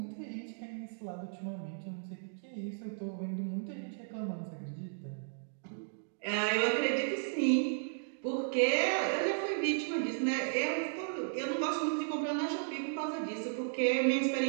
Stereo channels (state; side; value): silent; left; digital silence